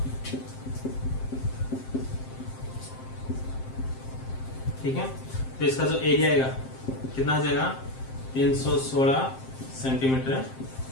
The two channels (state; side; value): late; right; 7.6 ms